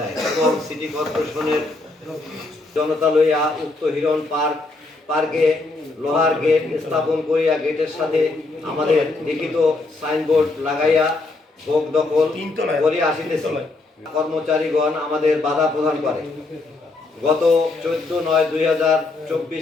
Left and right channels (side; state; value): right; quieter; 3.4 dB